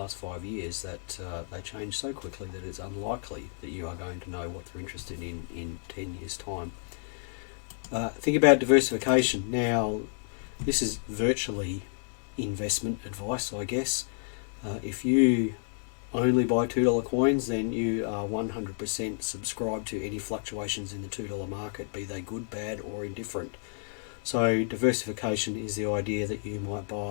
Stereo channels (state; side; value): silent; right; digital silence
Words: 5 years, that they change so quickly that it's unlikely that you are going to know what they're interested in 10 years time. Think about diversification. Now, this is virtually investment advice, I guess. If you only buy $2 coins, then you are 100% subscribed to any fluctuations in the $2 market, be they good, bad, or indifferent. So diversification is the idea that you might